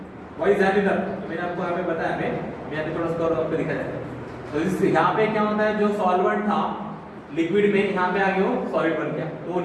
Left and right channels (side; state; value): both; identical; correlation 1.00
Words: Why is that? तो मैंने आपको यहाँ पे बताया, मैं यहाँ पे थोड़ा सा और आपको दिखा जाता है। तो इस यहाँ पे क्या होता है, जो सॉल्वेंट था लिक्विड में यहाँ पे आ गया वो सॉलिड बन गया, तो वो